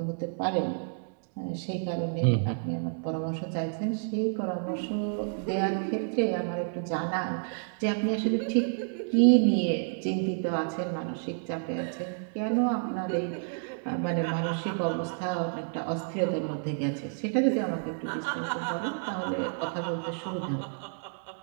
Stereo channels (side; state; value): left; silent; digital silence